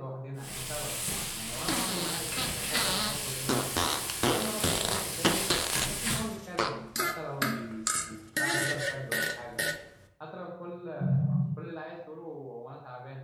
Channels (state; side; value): identical; both; correlation 1.00